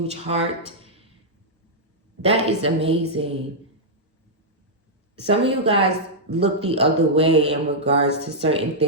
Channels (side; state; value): both; normal; correlation -0.08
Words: heart. That is amazing. Some of you guys look the other way in regards to certain